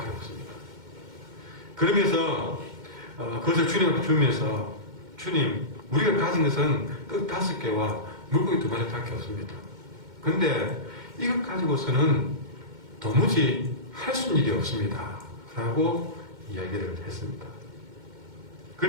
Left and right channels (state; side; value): late; left; 2.1 ms